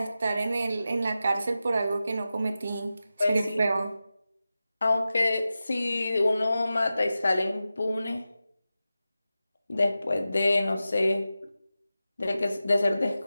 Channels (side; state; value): both; inverted; correlation -0.93